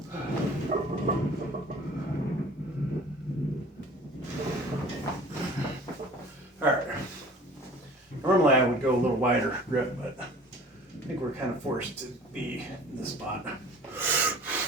Alright. Normally I would go a little wider grip, but I think we're kind of forced to be in this spot.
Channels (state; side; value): normal; both; correlation 0.46